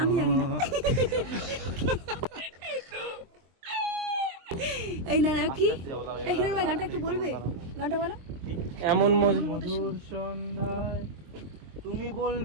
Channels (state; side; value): late; left; 23 ms